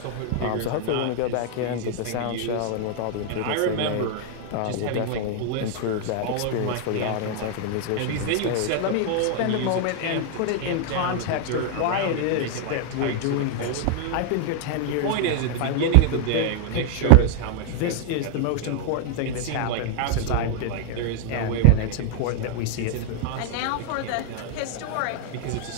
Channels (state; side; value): different; both; correlation 0.00